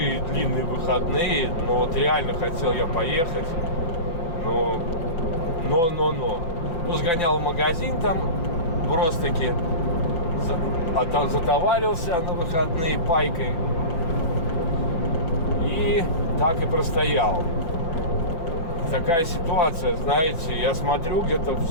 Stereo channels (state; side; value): late; right; 5.9 ms